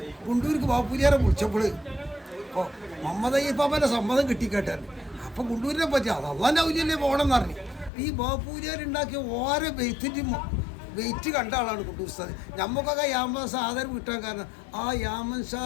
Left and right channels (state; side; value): drops out; right; at 7.9 s